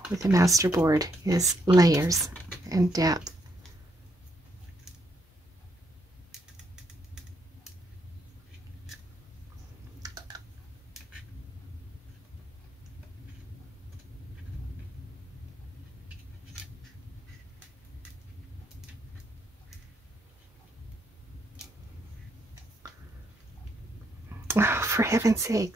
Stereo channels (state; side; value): normal; both; correlation 0.76